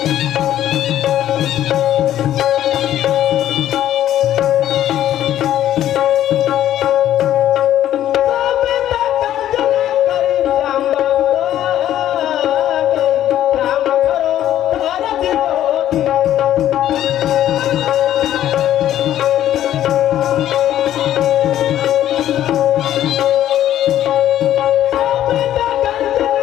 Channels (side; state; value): right; quieter; 12.0 dB